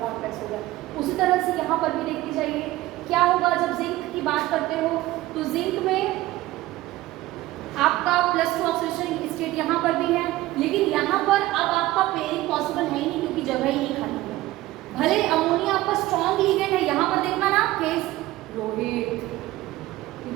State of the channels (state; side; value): quieter; left; 17.0 dB